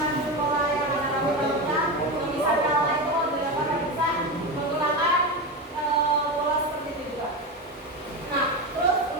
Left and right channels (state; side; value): normal; both; correlation 0.18